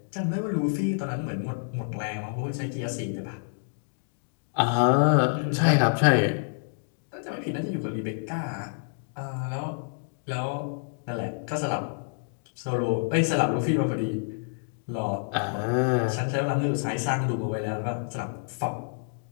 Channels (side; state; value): right; silent; digital silence